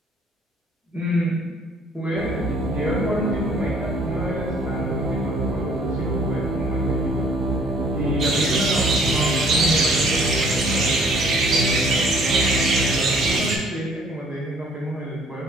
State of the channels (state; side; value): normal; both; correlation 0.58